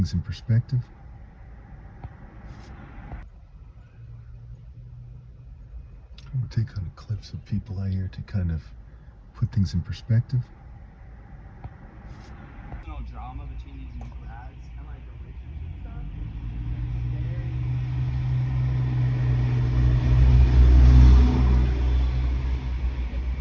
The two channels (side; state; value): both; identical; correlation 1.00